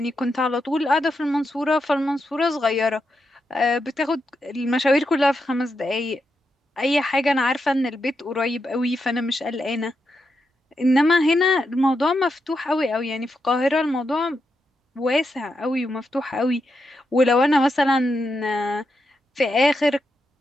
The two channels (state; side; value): normal; both; correlation 0.85